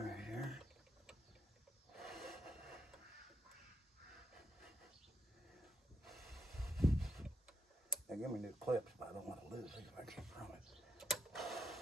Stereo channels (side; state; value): both; normal; correlation 0.74